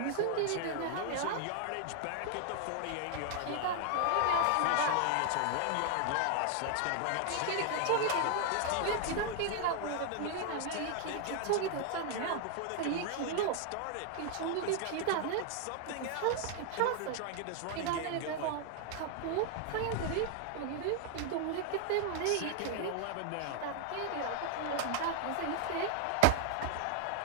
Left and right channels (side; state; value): both; different; correlation 0.00